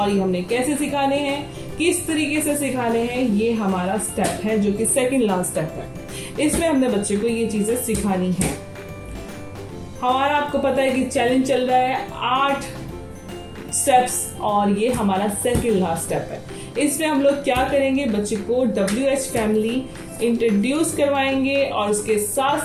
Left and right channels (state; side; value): identical; both; correlation 1.00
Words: ये हमने कैसे सिखाने हैं, किस तरीके से सिखाने हैं, ये हमारा स्टेप है जो कि सेकंड लास्ट स्टेप है। इसमें हमने बच्चे को ये चीजें सिखानी है। हमारा आपको पता है कि चैलेंज चल रहा है 8 स्टेप्स और ये हमारा सेकंड लास्ट स्टेप है। इसमें हम लोग क्या करेंगे, बच्चे को WH फैमिली इंट्रोड्यूस करवाएंगे और उसके साथ